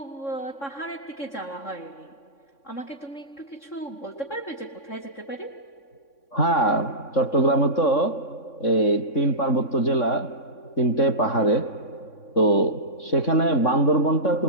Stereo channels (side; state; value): right; late; 3.6 ms